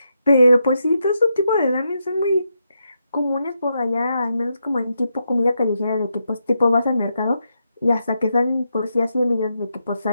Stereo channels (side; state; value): both; inverted; correlation -0.83